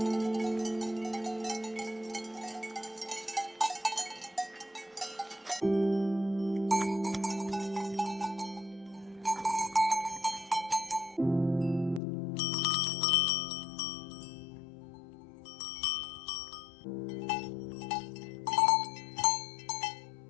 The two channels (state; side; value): drops out; right; at 12.0 s